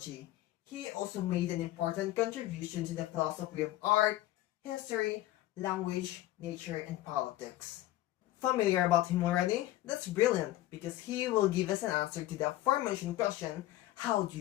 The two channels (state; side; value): quieter; right; 15.5 dB